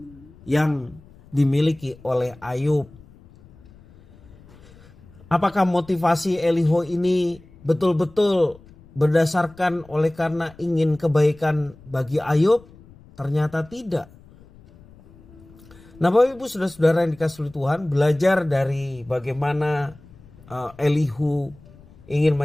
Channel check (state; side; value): noise; left; rumble, 24 dB below the sound